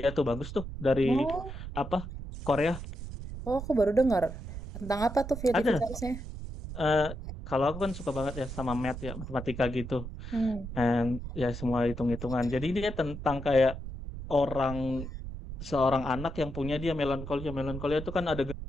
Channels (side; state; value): right; noise; rumble, 8 dB below the sound